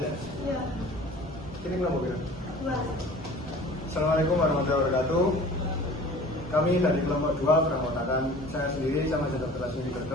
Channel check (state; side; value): normal; both; correlation 0.44